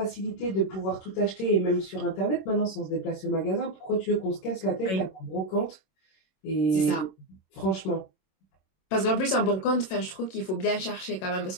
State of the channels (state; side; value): late; right; 27 ms